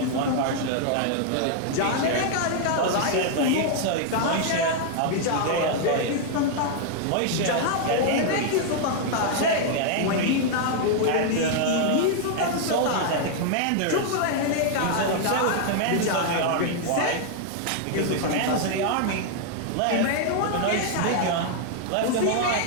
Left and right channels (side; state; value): both; different; correlation 0.00